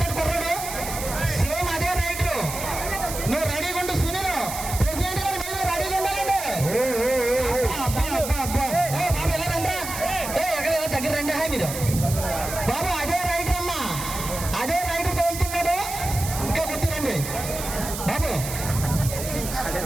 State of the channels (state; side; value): noise; right; hiss, 7 dB below the sound